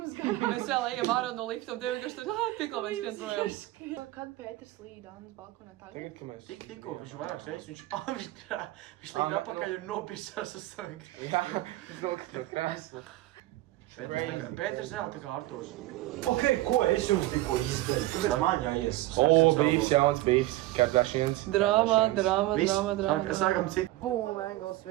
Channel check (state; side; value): quieter; left; 17.0 dB